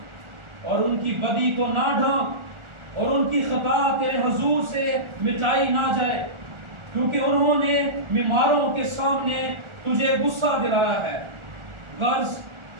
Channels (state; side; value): late; left; 1.4 ms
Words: اور ان کی بدی کو نہ ڈھانک، اور ان کی خطا تیرے حضور سے مٹائی نہ جائے، کیونکہ انہوں نے بیماروں کے سامنے تجھے غصہ دلایا ہے۔ غرض